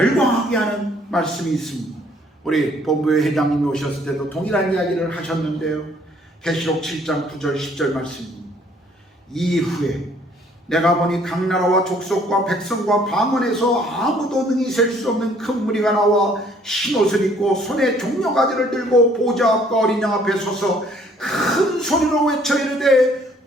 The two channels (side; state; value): both; normal; correlation 0.61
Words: 하는 말씀이 있습니다. 우리 본부의 회장님이 오셨을 때도 동일한 이야기를 하셨는데요. 계시록 7장 9절 10절 말씀입니다. 이후에 내가 보니 각 나라와 족속과 백성과 방언에서 아무도 능히 셀 수 없는 큰 무리가 나와 흰옷을 입고 손에 종려가지를 들고 보좌 앞과 어린 양 앞에 서서 큰 소리로 외쳐 이르되